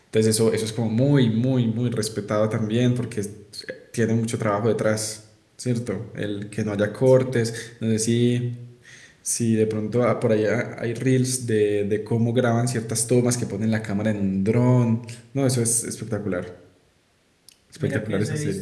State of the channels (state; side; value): identical; both; correlation 1.00